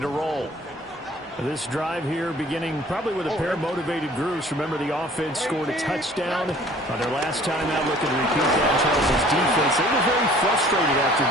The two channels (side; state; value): both; normal; correlation 0.52